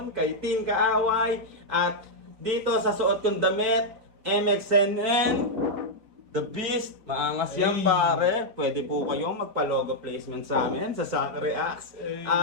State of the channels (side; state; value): left; late; 4.4 ms